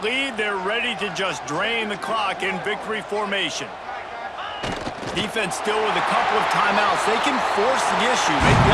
they're ready to just drain the clock in victory formation. Defense still with a couple of timeouts. They can force the issue, make the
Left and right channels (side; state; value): both; identical; correlation 1.00